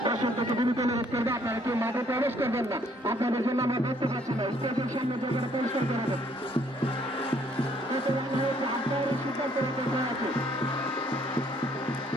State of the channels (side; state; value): both; normal; correlation 0.64